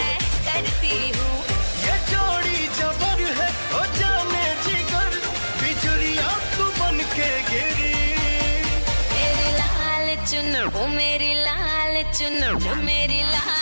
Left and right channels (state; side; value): inverted; both; correlation -1.00